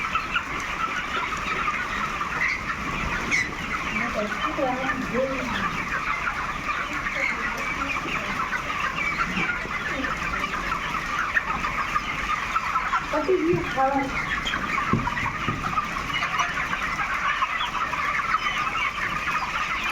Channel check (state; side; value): identical; both; correlation 1.00